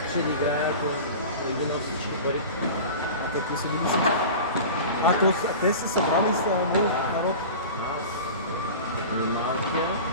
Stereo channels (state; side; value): inverted; both; correlation -0.34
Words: да играе, ако не би на всички пари. Те какви са били си? Те са събрали с народ. Малкия,